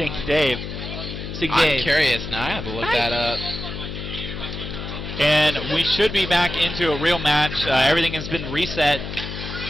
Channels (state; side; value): noise; left; hum, 7 dB below the sound